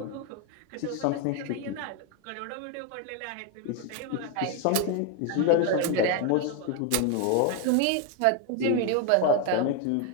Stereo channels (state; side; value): different; both; correlation 0.01